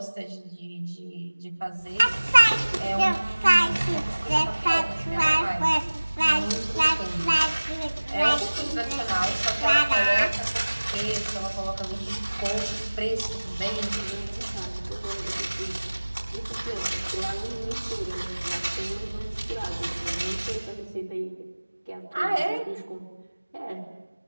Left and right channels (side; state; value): both; inverted; correlation -1.00